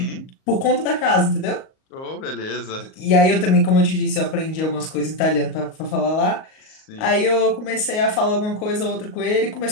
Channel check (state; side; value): late; right; 38 ms